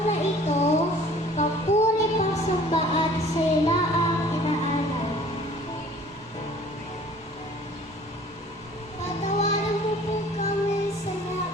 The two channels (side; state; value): both; normal; correlation 0.51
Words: na ito, papuri pagsamba at sila ang inaalay. Patawaran mo po kami sa